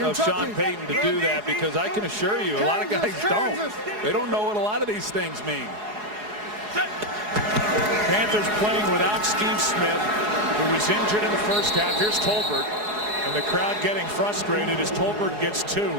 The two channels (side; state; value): left; late; 4.8 ms